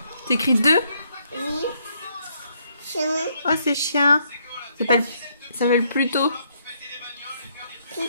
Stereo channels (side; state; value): both; inverted; correlation -0.72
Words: T'écris 2? Oui. Chien. Oh, c'est chien. Ça s'appelle Pluto.